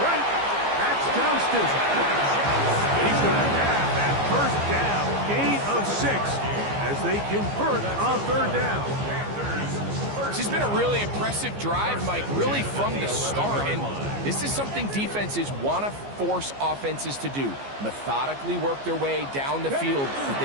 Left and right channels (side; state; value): left; late; 15 ms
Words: right. That's Johnston. He's going to have that first down. Gain of 6 as they convert on third down. This has been a really impressive drive, Mike, really from the start. And this is something defenses want to force offenses to do. Methodically work their way down the field. But